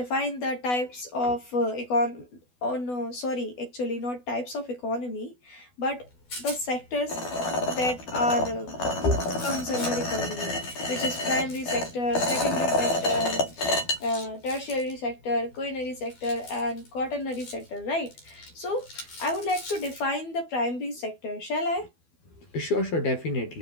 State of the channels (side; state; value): right; late; 12 ms